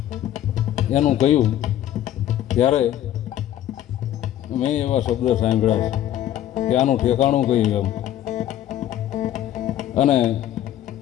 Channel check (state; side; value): quieter; right; 12.2 dB